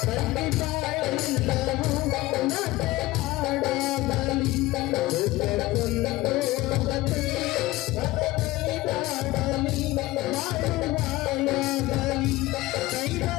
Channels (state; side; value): quieter; right; 18.7 dB